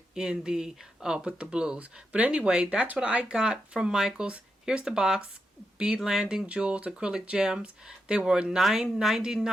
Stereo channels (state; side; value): normal; both; correlation 0.85